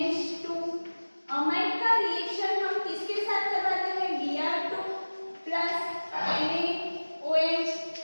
Amide का रिएक्शन हम किसके साथ करवाते हैं? Br2 plus NaOH।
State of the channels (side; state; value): both; inverted; correlation -1.00